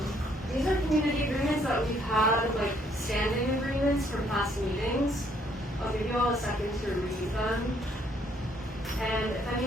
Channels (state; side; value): normal; both; correlation 0.67